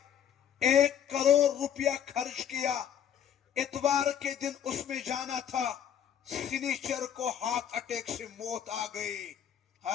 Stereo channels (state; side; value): quieter; right; 9.1 dB